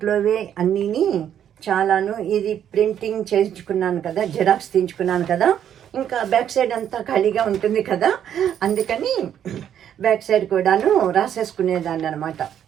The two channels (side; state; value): left; quieter; 9.7 dB